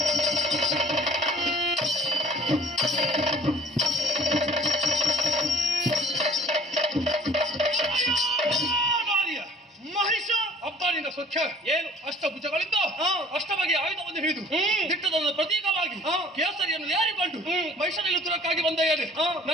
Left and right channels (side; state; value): both; normal; correlation 0.49